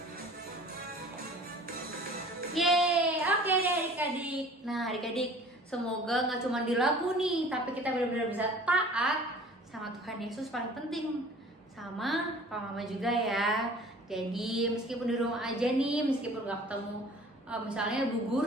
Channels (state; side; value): normal; both; correlation 0.47